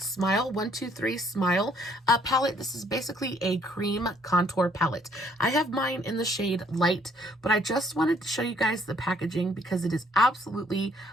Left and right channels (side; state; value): both; normal; correlation 0.65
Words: 123 Smile palette. This is basically a cream contour palette. I have mine in the shade Light, but I just wanted to show you guys the packaging because it is absolutely